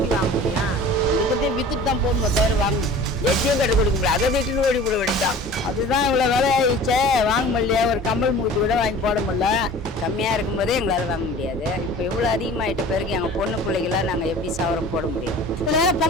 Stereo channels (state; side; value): normal; both; correlation 0.43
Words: வாங்க முடியும்? இருக்கிறதே வித்துட்டு தான் போகணும் தவிர வாங்க எஜ்ஜியும் கடை கொடுக்க முடியாது. அதை திட்டுன்னு ஓடி போட வேண்டியதான். அதுதான் இவ்வளோ விலை ஆயிடுச்சே, வாங்க முடியல. ஒரு கம்பல் மூச்சு கூட வாங்கி போட முடியல. கம்மியாக இருக்கும்போதே எங்களால் வாங்க முடியாது. இப்போ இவ்வளோ அதிகமாகிட்ட பிறகு எங்கள் பொண்ணு பிள்ளைகளாம் நாங்கள் எப்படி சவரம் போட முடியும்? இதில் வேறு